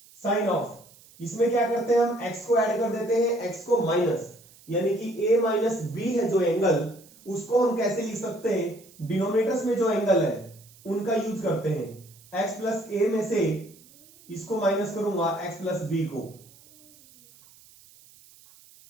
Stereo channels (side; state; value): right; noise; hiss, 25 dB below the sound